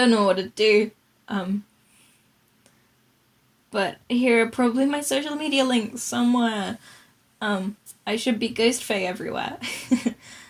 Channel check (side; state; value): both; identical; correlation 1.00